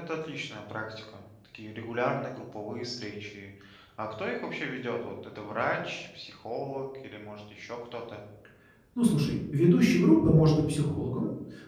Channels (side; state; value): both; identical; correlation 1.00